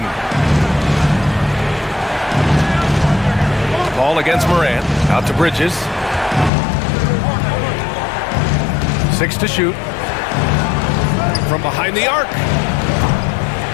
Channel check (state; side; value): drops out; right; at 6.5 s